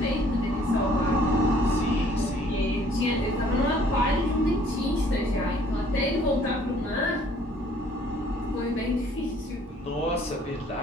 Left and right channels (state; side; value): normal; both; correlation 0.58